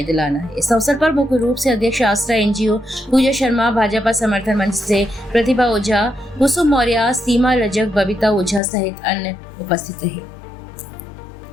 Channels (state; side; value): drops out; right; at 8.6 s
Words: दिलाना है। इस अवसर पर मुख्य रूप से अध्यक्ष आसरा एनजीओ पूजा शर्मा, भाजपा समर्थन मंच से प्रतिभा ओझा, कुसुम मौर्य, सीमा रजक, बबीता ओझा सहित अन्य उपस्थित रहे।